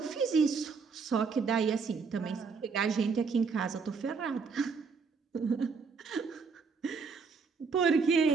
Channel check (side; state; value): left; quieter; 5.2 dB